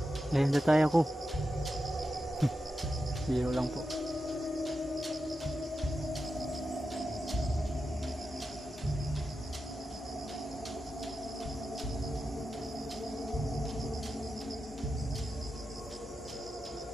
Ayun na tayo ko. Biro lang po.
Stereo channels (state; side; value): normal; both; correlation 0.90